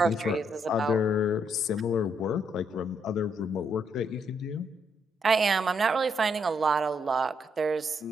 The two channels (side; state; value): both; normal; correlation 0.75